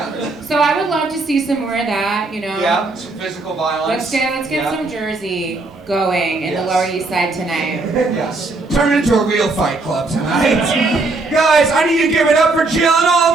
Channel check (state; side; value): quieter; left; 3.4 dB